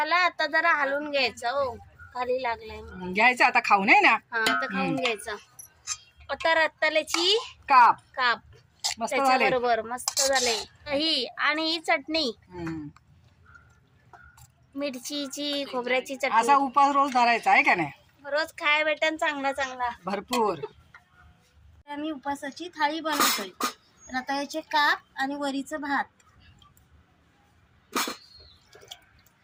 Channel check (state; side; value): identical; both; correlation 1.00